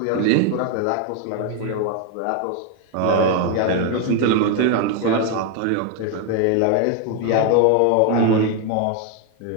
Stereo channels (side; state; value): both; different; correlation 0.01